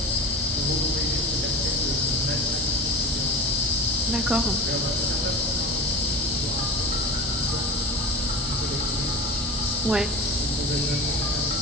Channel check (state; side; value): normal; both; correlation 0.31